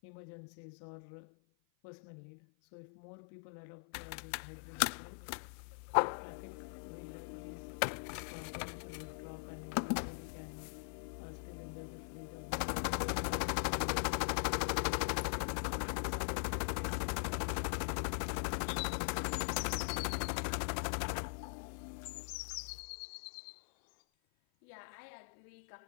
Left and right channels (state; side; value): silent; right; 50 dB below the other